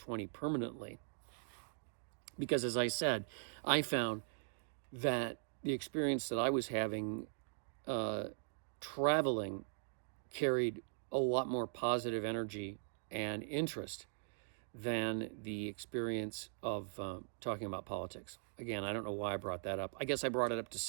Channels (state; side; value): silent; left; digital silence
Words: permanently. Because as I said, I found that the experience that I was having traveling carried a lot more positive energy and interest than the experience of talking about politics. Again, I don't know why I brought that up. I guess I brought it up to